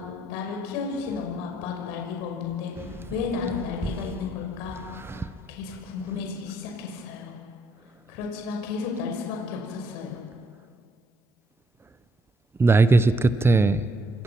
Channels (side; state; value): both; normal; correlation 0.72